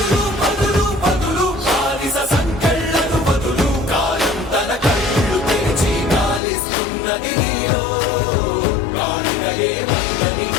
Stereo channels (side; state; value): right; drops out; at 6.4 s